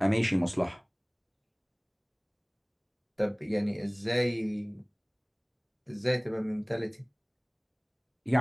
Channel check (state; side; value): identical; both; correlation 1.00